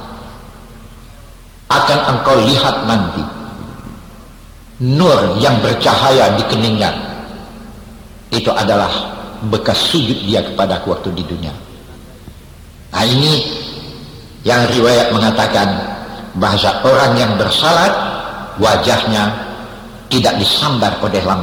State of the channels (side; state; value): both; identical; correlation 1.00